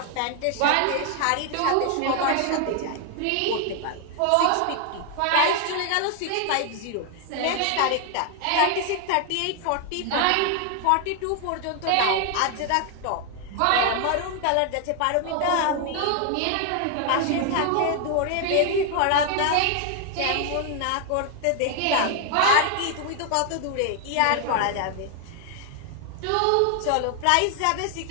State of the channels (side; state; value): both; different; correlation 0.00